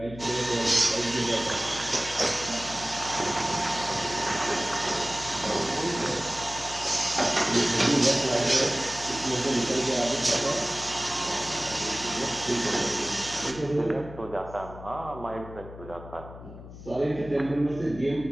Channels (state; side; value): noise; left; hum, 15 dB below the sound